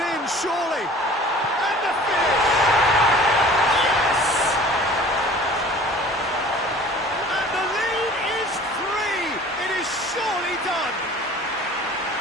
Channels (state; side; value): normal; both; correlation 0.46